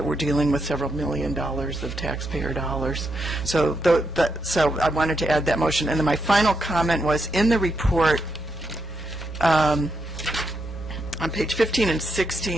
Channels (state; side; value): normal; both; correlation 0.82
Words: we're dealing with several $1 million of taxpayer dollars. So, so I wanted to add that motion. And then my final comment was, in the report, on page 15 and